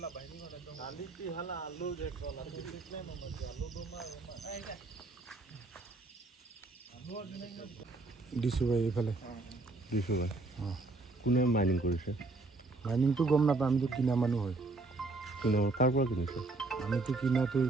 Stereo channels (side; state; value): left; quieter; 3.4 dB